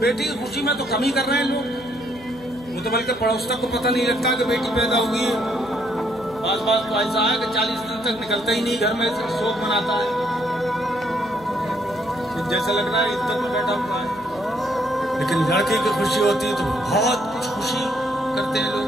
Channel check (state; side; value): noise; left; hum, 20 dB below the sound